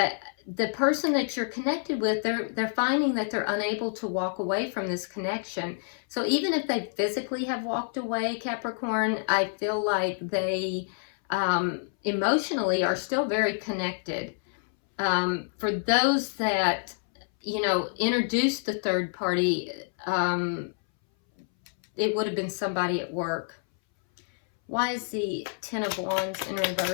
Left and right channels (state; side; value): silent; right; 59 dB below the other